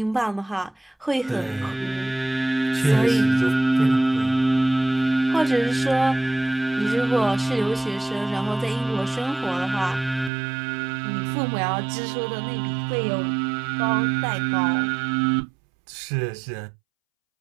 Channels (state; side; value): drops out; left; at 10.3 s